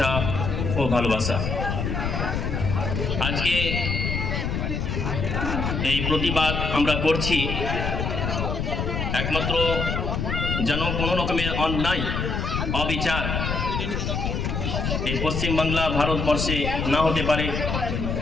ও ভালোবাসা। আজকে এই প্রতিবাদ আমরা করছি একমাত্র যেন কোনো রকমের অন্যায়, অবিচার এই পশ্চিমবাংলা ভারতবর্ষে না হতে পারে।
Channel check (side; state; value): left; noise; rumble, 1 dB below the sound